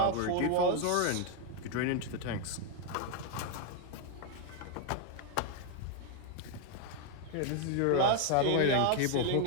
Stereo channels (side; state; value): both; different; correlation 0.01